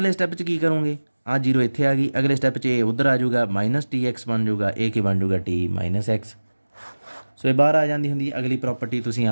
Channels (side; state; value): both; inverted; correlation -1.00